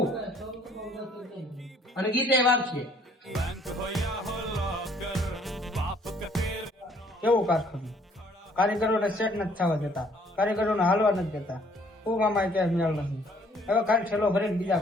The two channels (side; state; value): both; normal; correlation 0.61